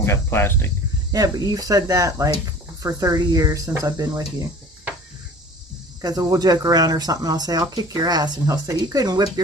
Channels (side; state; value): both; normal; correlation 0.44